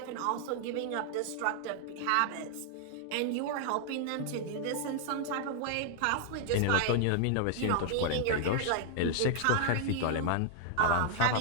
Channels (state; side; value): different; both; correlation -0.01